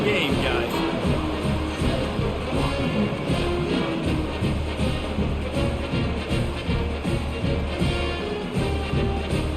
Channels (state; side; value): identical; both; correlation 1.00